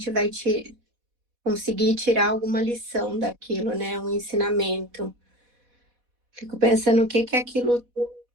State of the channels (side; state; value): left; late; 4.1 ms